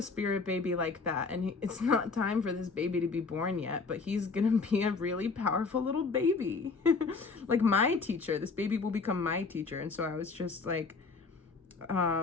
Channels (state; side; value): quieter; right; 4.4 dB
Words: spirit baby like that, and it's not time for this baby to be born yet, but he's gonna be a really powerful little baby. Like my teacher, this baby will become my teacher. And so I was just like,